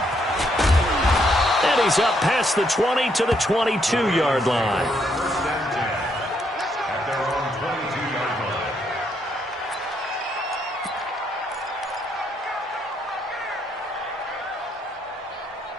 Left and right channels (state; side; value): normal; both; correlation 0.74